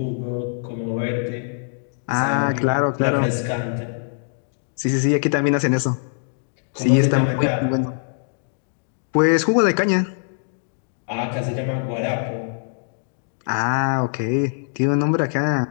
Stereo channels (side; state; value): right; silent; digital silence